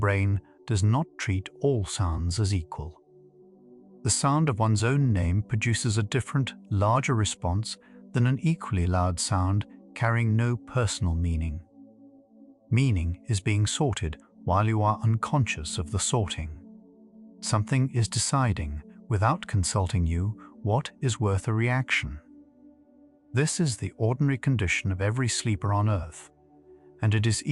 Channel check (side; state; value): both; identical; correlation 1.00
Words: does not treat all sounds as equal. The sound of one's own name produces a different, larger response than an equally loud sound carrying no personal meaning. Meaning is being sorted while you are unconscious of the sorting. Something is deciding, without consulting you, what is worth a reaction. This is the ordinary condition of every sleeper on Earth, and it is